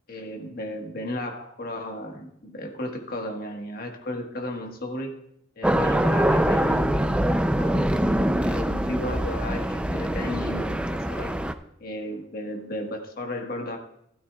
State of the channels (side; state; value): both; normal; correlation 0.84